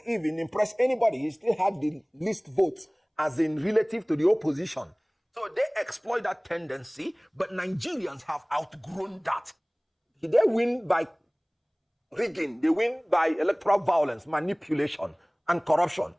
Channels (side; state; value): both; identical; correlation 1.00